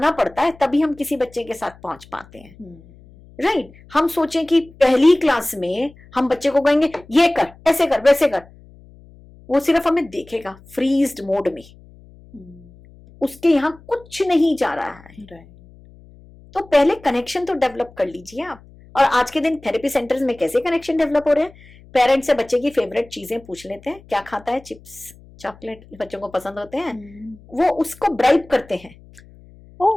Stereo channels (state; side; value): noise; left; hum, 24 dB below the sound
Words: पड़ता है, तभी हम किसी बच्चे के साथ पहुंच पाते हैं, राइट। हम सोचें कि पहली क्लास में हम बच्चे को कहेंगे ये कर, ऐसे कर, वैसे कर, वो सिर्फ हमें देखेगा फ्रीज्ड मोड में, उसके यहाँ कुछ नहीं जा रहा है। Right. तो पहले कनेक्शन तो डेवलप कर लीजिए आप। और आज के दिन थेरेपी सेंटर्स में कैसे कनेक्शन डेवलप हो रहे हैं, पेरेंट्स से बच्चे की फेवरेट चीजें पूछ लेते हैं, क्या खाता है, चिप्स, चॉकलेट बच्चों को पसंद होते हैं, वो उसको ब्राइब करते हैं।